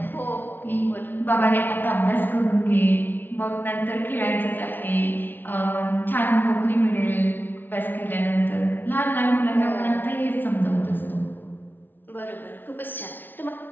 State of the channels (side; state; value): right; late; 0.093 ms